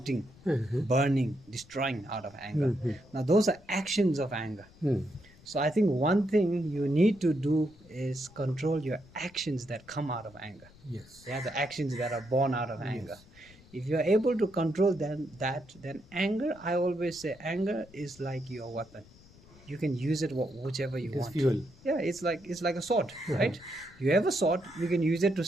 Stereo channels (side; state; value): left; noise; rumble, 24 dB below the sound